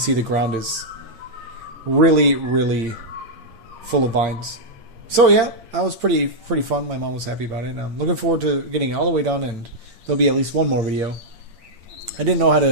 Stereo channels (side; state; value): left; late; 8.8 ms